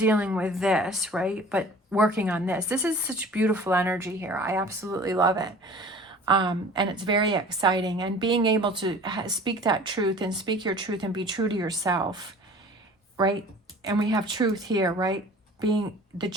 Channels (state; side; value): normal; both; correlation 0.45